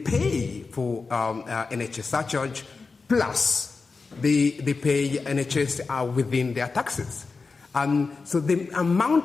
for NHS surcharge, plus they pay NHS within their taxes. So the amount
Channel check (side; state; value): right; quieter; 4.4 dB